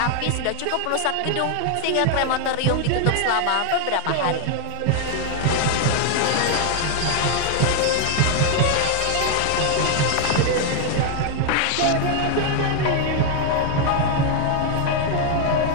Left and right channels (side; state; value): both; different; correlation 0.00